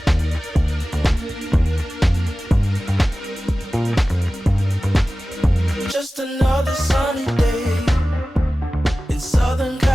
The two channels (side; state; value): both; normal; correlation 0.96